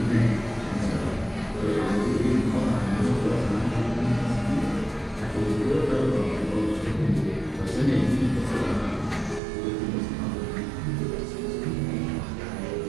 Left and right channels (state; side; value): drops out; left; at 9.4 s